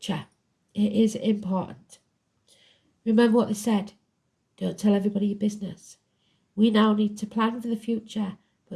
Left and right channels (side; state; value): both; identical; correlation 1.00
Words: it is important. Remember what they said. Don't tell everybody your business. We now need to plan for the future,